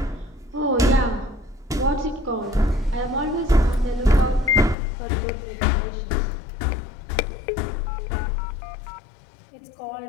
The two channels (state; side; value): drops out; right; at 4.8 s